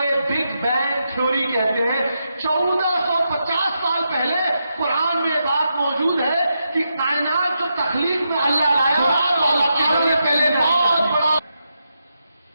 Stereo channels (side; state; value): both; inverted; correlation -0.85